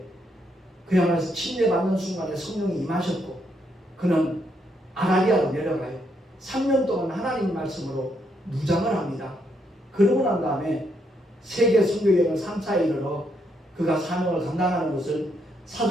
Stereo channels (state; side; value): normal; both; correlation 0.76